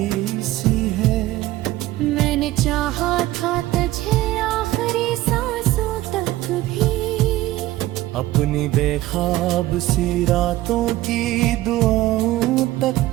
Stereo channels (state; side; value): quieter; left; 16.4 dB